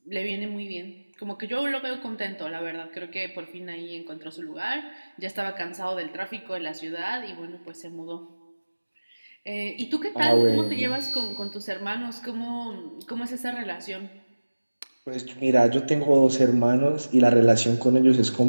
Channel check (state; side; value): inverted; both; correlation -1.00